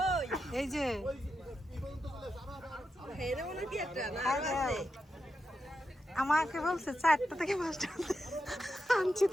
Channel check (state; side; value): normal; both; correlation 0.87